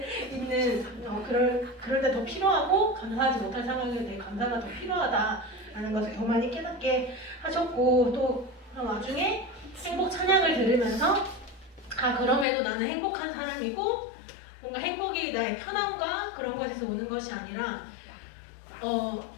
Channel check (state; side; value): drops out; right; at 12.5 s